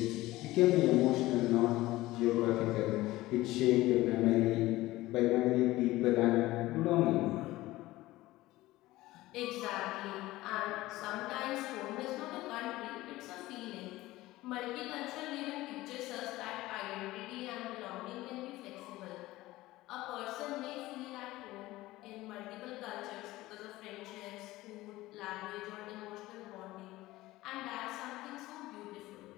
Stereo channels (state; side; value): quieter; right; 17.8 dB